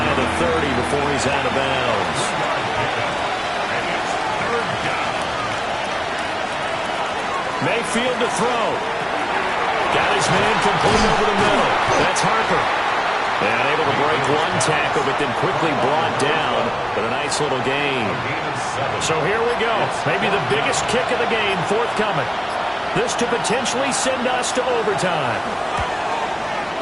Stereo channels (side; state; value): both; identical; correlation 1.00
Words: of the 30 before he's out of bounds. Mayfield to throw. Got his man complete over the middle. That's Harper. And able to break one tackle, but then quickly brought down. But a nice little gain. So here we go. Maybe the biggest kick of the game forthcoming. This to potentially send us to overtime.